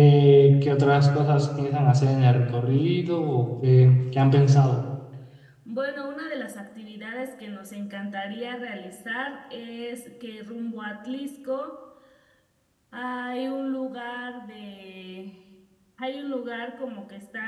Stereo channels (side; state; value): both; identical; correlation 1.00